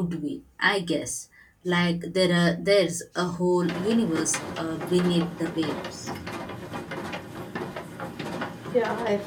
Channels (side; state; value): both; identical; correlation 1.00